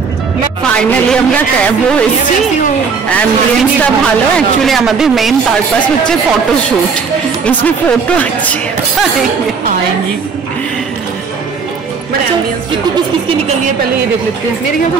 ফাইনালি আমরা ক্যাবও এসেছি, অ্যাম্বিয়েন্সটা ভালো। অ্যাকচুয়ালি আমাদের মেইন পারপাস হচ্ছে ফটোশুট, इसमें फोटो अच्छी आएंगी। किसको किस किसकी निकल रही है पहले ये देख लेते हैं। मेरे ख्याल से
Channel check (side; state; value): left; quieter; 5.5 dB